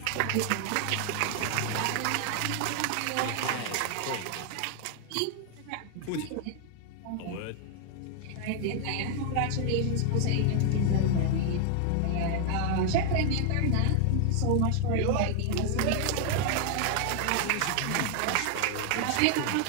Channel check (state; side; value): different; both; correlation 0.00